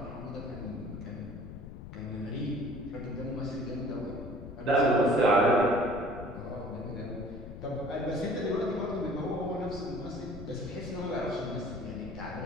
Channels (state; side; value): noise; left; rumble, 12 dB below the sound